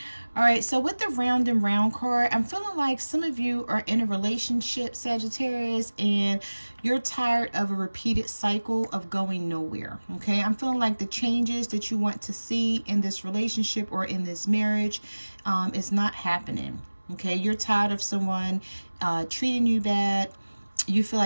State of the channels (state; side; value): inverted; both; correlation -1.00